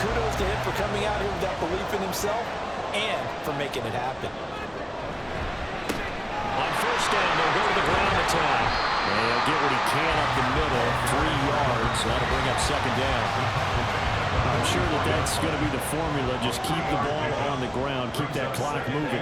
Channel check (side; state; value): both; identical; correlation 1.00